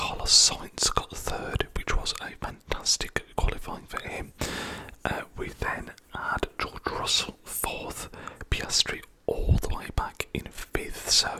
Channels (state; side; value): identical; both; correlation 1.00